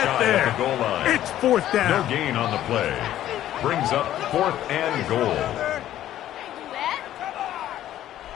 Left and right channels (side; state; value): right; quieter; 12.5 dB